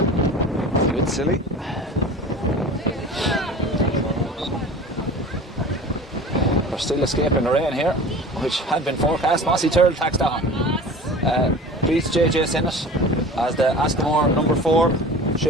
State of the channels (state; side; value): normal; both; correlation 0.38